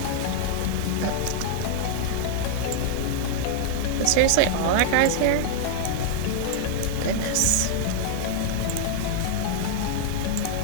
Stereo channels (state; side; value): different; both; correlation -0.01